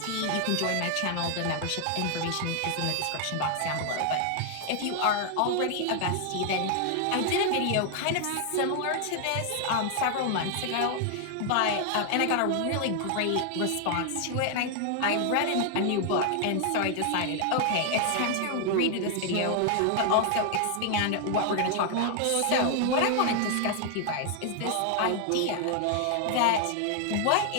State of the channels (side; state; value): both; different; correlation 0.00